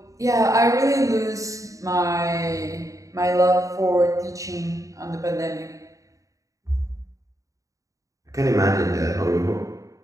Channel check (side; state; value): left; late; 0.16 ms